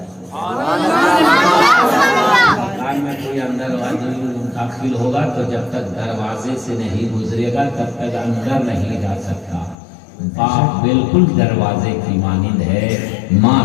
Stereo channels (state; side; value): drops out; right; at 9.8 s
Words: میں کوئی اندر داخل ہوگا تو جب تک دروازے سے نہیں گزرے گا تب تک اندر نہیں جا سکتا. باپ بالکل دروازے کی مانند ہے، ماں